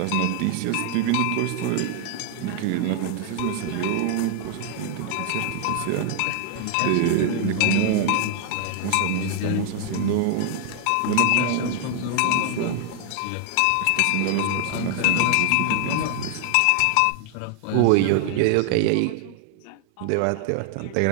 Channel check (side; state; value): both; different; correlation 0.00